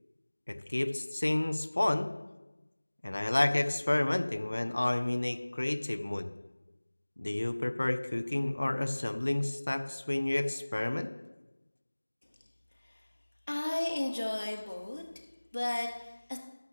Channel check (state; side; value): inverted; both; correlation -1.00